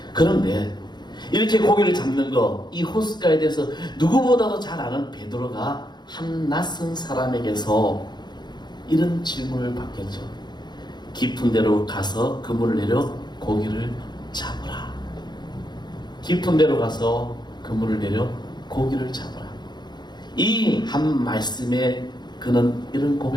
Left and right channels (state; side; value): late; right; 0.21 ms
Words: 그런데 이렇게 고기를 잡는 거, 이 호스가에 대해서 누구보다도 잘 아는 베드로가 한 낯선 사람에게서 이런 질문을 받겠죠. 깊은 데로 가서 그물을 내려 고기를 잡으라. 깊은 데로 가서 그물을 내려 고기를 잡으라. 이 한 말씀에 그는 이런